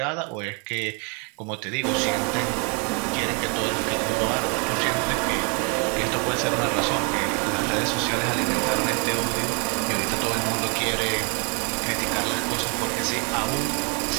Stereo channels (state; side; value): quieter; left; 35.2 dB